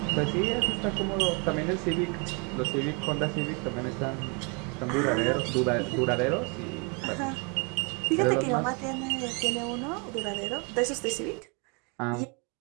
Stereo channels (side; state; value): left; quieter; 33.4 dB